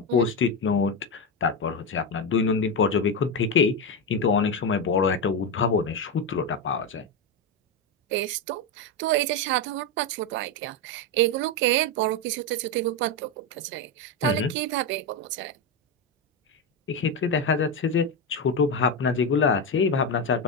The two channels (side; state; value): both; normal; correlation 0.12